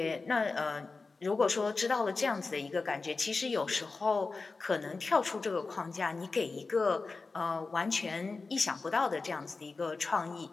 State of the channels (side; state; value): right; quieter; 4.0 dB